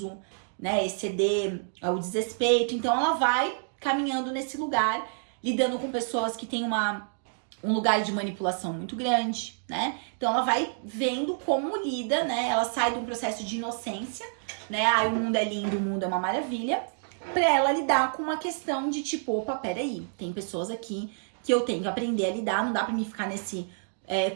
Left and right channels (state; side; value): silent; left; digital silence